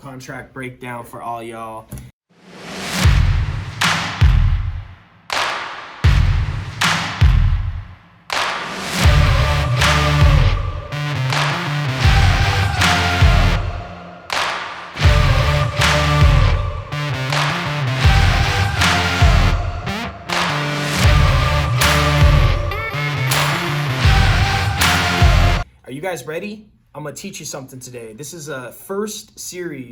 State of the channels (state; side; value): identical; both; correlation 1.00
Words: breakdown for all y'all. Are you guys ready? I'm gonna teach you something today. This is a first